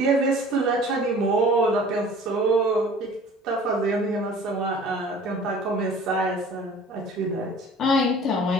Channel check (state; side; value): normal; both; correlation 0.47